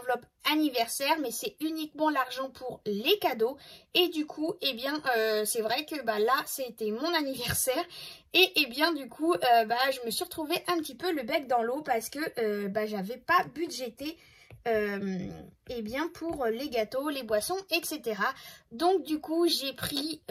anniversaire, mais c'est uniquement l'argent pour les cadeaux. Et du coup, eh bien, c'est vrai que bah, là, c'était mon anniversaire. Et eh bien, du coup, je me suis retrouvée un petit peu le bec dans l'eau parce que j'avais pas budgété eh bien pour les gâteaux, les boissons, etc. Donc du coup j'ai pris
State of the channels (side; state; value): both; identical; correlation 1.00